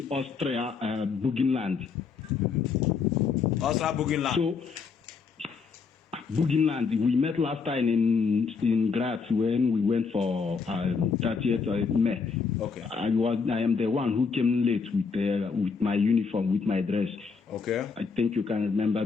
Austria Burgenland. Austria Burgenland. So, Burgenland. We met last time in Graz when we went for 30th of May. Okay. I am the one who came late with my uniform, with my dress. Okay. I think you can remember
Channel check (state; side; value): quieter; right; 5.3 dB